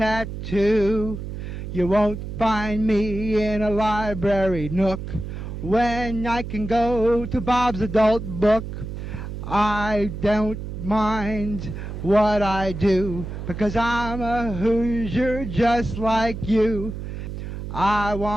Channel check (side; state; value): right; noise; hum, 7 dB below the sound